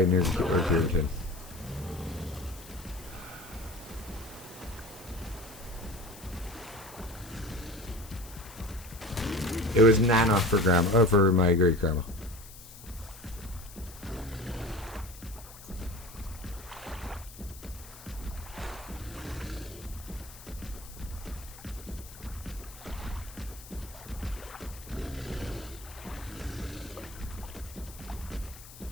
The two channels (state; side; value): noise; left; hiss, 17 dB below the sound